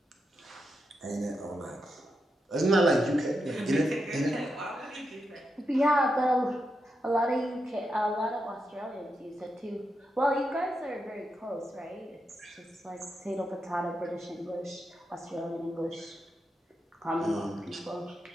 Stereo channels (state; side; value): normal; both; correlation 0.86